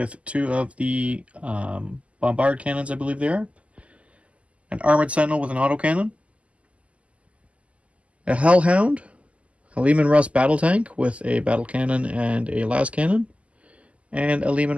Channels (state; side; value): late; left; 0.063 ms